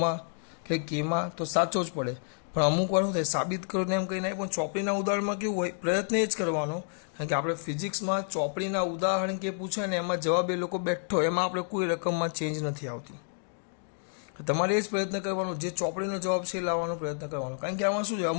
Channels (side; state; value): right; silent; digital silence